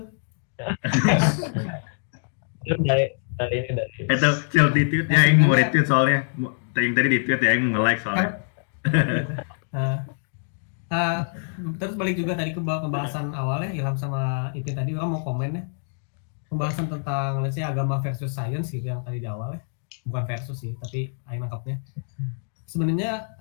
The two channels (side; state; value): right; silent; digital silence